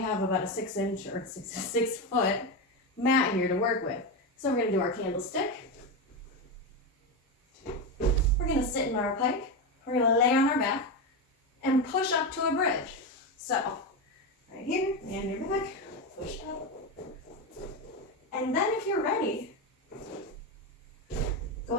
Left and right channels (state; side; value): normal; both; correlation 0.14